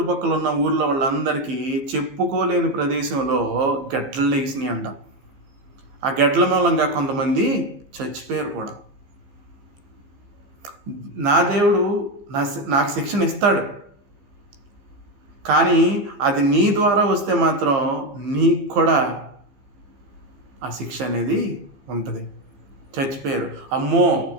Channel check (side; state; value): left; late; 15 ms